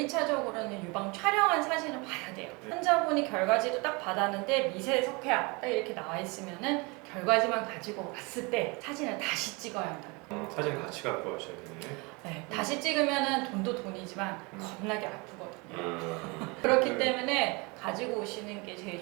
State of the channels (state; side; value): quieter; left; 27.9 dB